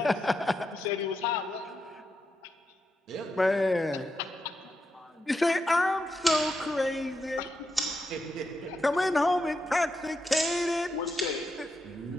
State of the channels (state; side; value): normal; both; correlation 0.85